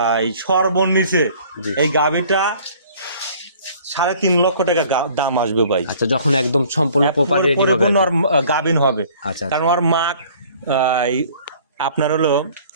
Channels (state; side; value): inverted; both; correlation -0.53